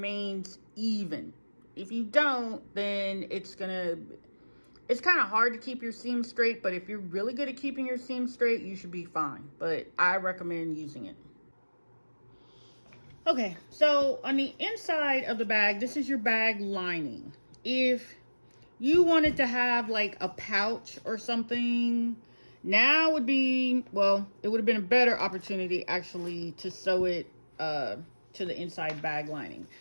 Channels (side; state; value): both; inverted; correlation -1.00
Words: even. If you don't, then it's kind of hard to keep your seam straight, but if you're really good at keeping your seam straight, you should be fine. But I recommend using it. Okay, so on the inside of the bag, this is your bag lining. If you wanted to have like a pouch or something, now would be, well, it would have been a better opportunity actually to sew it to the inside bag lining.